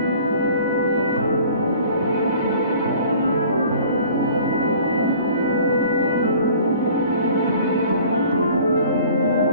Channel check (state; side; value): inverted; both; correlation -0.49